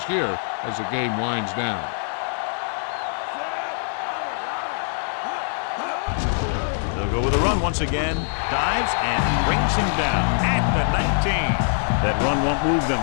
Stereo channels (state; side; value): silent; right; 63 dB below the other